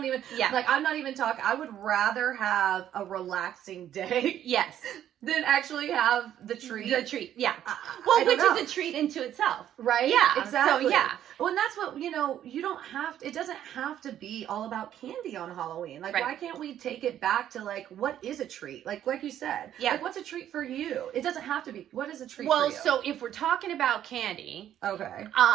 even yeah. like, I'm not even talking. I would rather have a relaxing day Yes. than actually have the treat. The treat. Yeah. I Well, don't which know. is a treat into itself. Right? Yeah. Exactly. So, yeah. Well, and that's what, you know, you don't have to, it doesn't have to be all about candy on Halloween. Like, Right. why can't we take it back to like, what is a treat? Like you said. Yeah. Like, what's a treat for you? It doesn't have to be. What is a treat Well, for you? so if we're talking about candy, Okay.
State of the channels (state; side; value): quieter; left; 11.0 dB